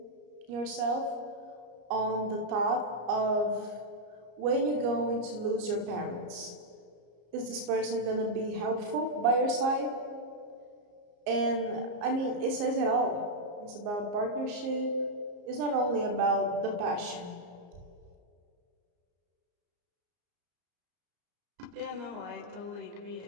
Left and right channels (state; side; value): late; left; 34 ms